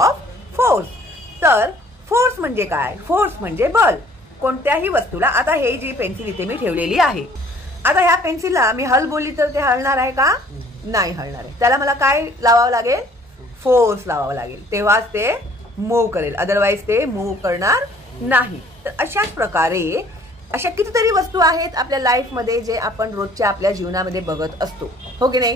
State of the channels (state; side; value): normal; both; correlation 0.56